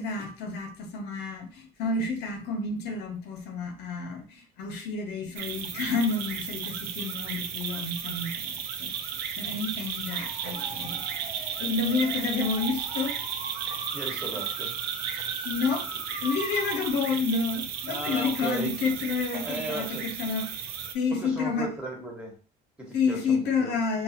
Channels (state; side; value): normal; both; correlation 0.34